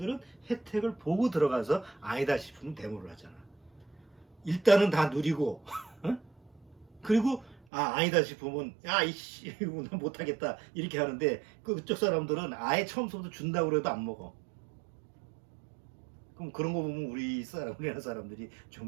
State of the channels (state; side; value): drops out; left; at 7.6 s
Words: 혜택을 보고 들어가서 아니다 싶으면 데모를 하잖아. 일단은 다 누리고 그리고 아니다 싶으면 이씨 난 못하겠다 이렇게 하는데 그쪽 사람들은 아예 처음부터 준다고 해도 안 먹어. 그럼 그런 거 보면 우리나라 사람들이